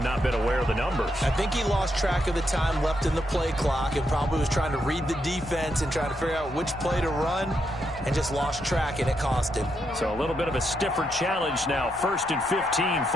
not been aware of the numbers. I think he lost track of the time left in the play clock and probably was trying to read the defense and trying to figure out which play to run and just lost track, and it cost him. So a little bit of a stiffer challenge now. 1st and 15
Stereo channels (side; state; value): both; normal; correlation 0.80